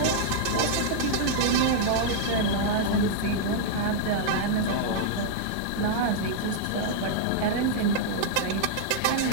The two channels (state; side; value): different; both; correlation -0.01